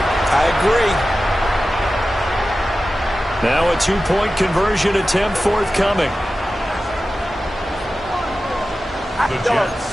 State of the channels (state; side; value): normal; both; correlation 0.94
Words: I agree. Now a 2-point conversion attempt forthcoming. The